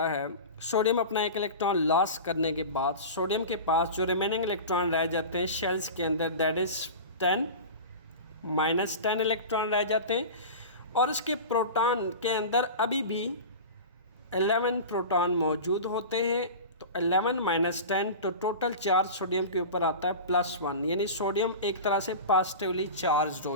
है। सोडियम अपना एक इलेक्ट्रॉन लॉस करने के बाद सोडियम के पास जो रिमेनिंग इलेक्ट्रॉन रह जाते हैं शेल्स के अंदर, दैट इज़ 10 -10 इलेक्ट्रॉन रह जाते हैं और इसके प्रोटॉन के अंदर अभी भी 11 प्रोटॉन मौजूद होते हैं। तो 11 - 10 तो टोटल चार्ज सोडियम के ऊपर आता है +1, यानी सोडियम एक तरह से पॉजिटिवली चार्ज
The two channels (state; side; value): inverted; both; correlation -0.31